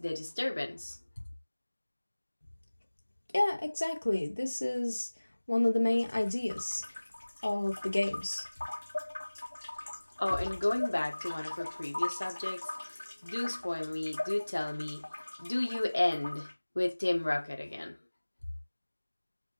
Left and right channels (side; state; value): both; inverted; correlation -1.00